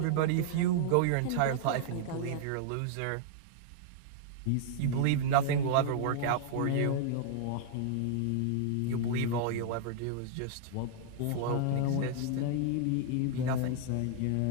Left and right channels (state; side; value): different; both; correlation -0.01